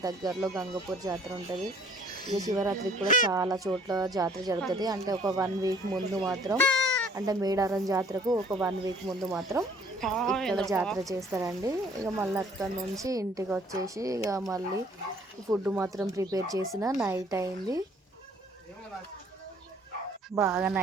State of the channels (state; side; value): normal; both; correlation 0.57